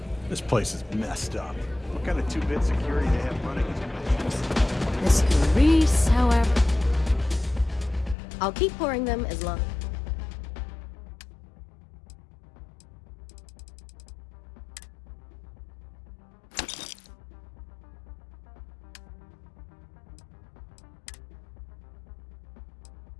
This place is messed up. What kind of two-bit security they have running? Mr. Reese, however... I'll keep pouring them as long.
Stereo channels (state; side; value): drops out; right; at 8.2 s